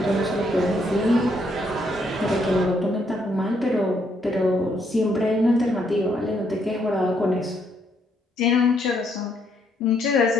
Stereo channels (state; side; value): normal; both; correlation 0.72